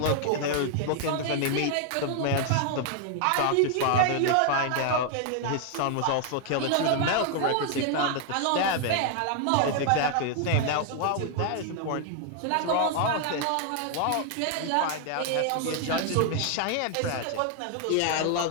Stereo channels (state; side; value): different; both; correlation 0.00